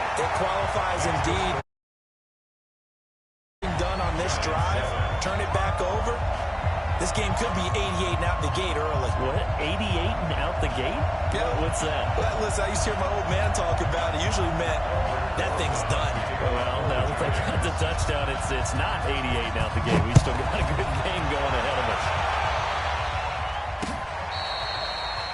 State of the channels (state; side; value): identical; both; correlation 1.00